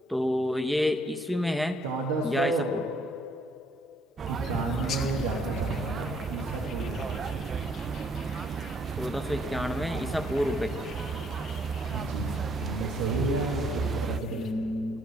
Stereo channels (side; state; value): both; normal; correlation 0.67